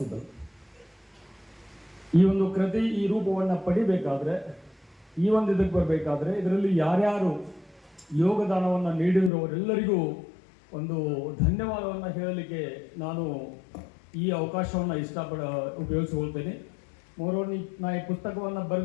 ಈ ಒಂದು ಕೃತಿ ಈ ರೂಪವನ್ನು ಪಡಿಬೇಕಾದ್ರೆ, ಈ ಒಂದು ಇದಕ್ಕೆ ಬರಬೇಕಾದ್ರೆ ಇದರಲ್ಲಿ ಯಾರ್ಯಾರು ಯೋಗದಾನವನ್ನು ನೀಡಿದವರೆಲ್ಲರಿಗೂ ಒಂದು ಧನ್ಯವಾದವನ್ನು ಹೇಳಲಿಕ್ಕೆ ನಾನು ಈ ಅವಕಾಶವನ್ನು ಉಪಯೋಗಿಸಿಕೊಳ್ತೇನೆ. ನಾ ಈ ಪುಸ್ತಕವನ್ನು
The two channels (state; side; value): drops out; right; at 9.3 s